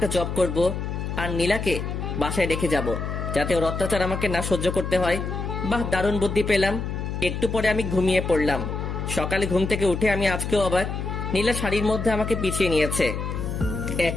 জব করব, আর নীলাকে বাসায় রেখে যাব, যাতে ওর অত্যাচার আমাকে না সহ্য করতে হয়। বাহ, দারুণ বুদ্ধি পেলাম। একটু পরে আমি ঘুমিয়ে পড়লাম। সকালে ঘুম থেকে উঠে আমি আজকেও অবাক। নীলা শাড়ির মধ্যে আমাকে পিছিয়ে নিয়েছে,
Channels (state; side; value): noise; left; hum, 4 dB below the sound